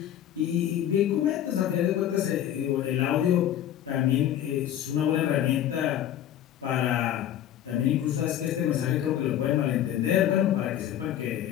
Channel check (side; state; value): right; quieter; 11.0 dB